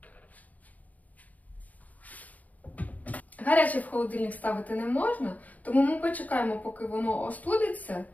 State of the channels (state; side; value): late; right; 0.076 ms